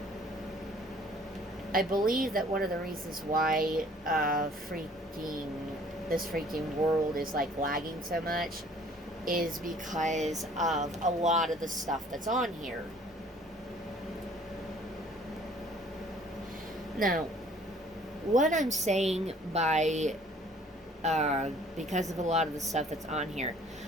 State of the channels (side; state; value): both; normal; correlation 0.55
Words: I believe that one of the reasons why freaking this freaking world is like lagging so much is because of a lot of the stuff that's on here. Now, what I'm saying by because of a lot of the stuff that's on here,